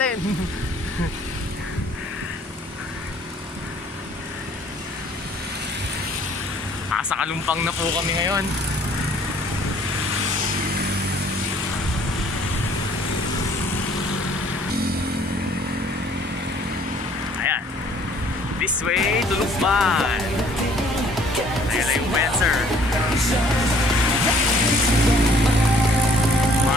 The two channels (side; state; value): both; normal; correlation 0.58